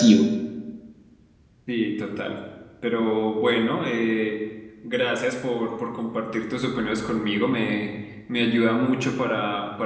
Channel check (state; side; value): identical; both; correlation 1.00